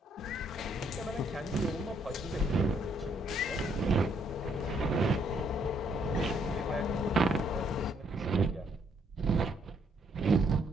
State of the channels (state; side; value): normal; both; correlation 0.70